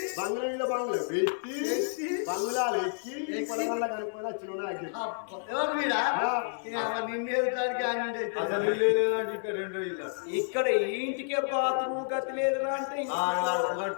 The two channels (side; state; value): right; silent; 58 dB below the other